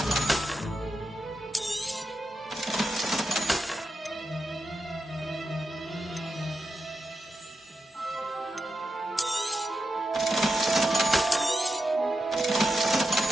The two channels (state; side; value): normal; both; correlation 0.88